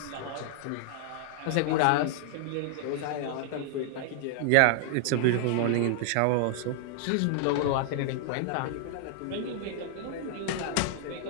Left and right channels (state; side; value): different; both; correlation -0.01